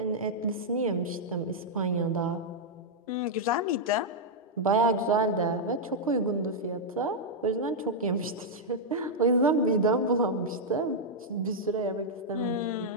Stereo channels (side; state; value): both; normal; correlation -0.05